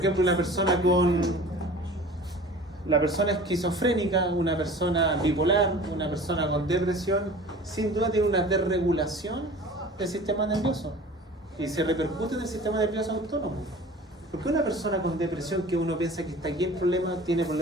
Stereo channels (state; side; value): normal; both; correlation 0.42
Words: ejemplo, la persona esquizofrénica, una persona bipolar, una persona con depresión, sin duda tiene una desregulación del sistema nervioso y se repercute en el sistema nervioso autónomo. ¿Por qué una persona con depresión, que uno piensa que está aquí el problema, tiene